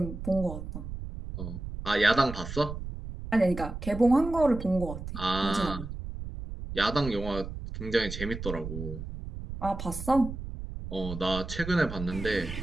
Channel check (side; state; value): right; noise; rumble, 8 dB below the sound